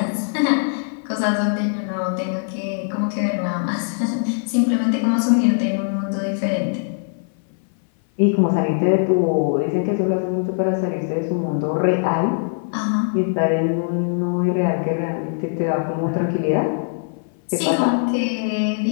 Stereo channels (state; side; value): silent; right; 59 dB below the other